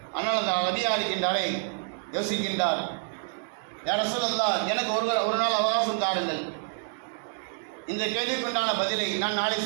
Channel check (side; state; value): left; silent; digital silence